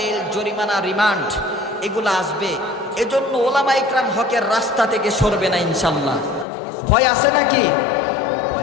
জরিমানা, রিমান্ড এগুলো আসবে। এজন্য ওলামা ইকরাম হকের রাস্তা থেকে সরবে না ইনশাল্লাহ। ভয় আছে নাকি?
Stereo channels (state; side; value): drops out; right; at 6.5 s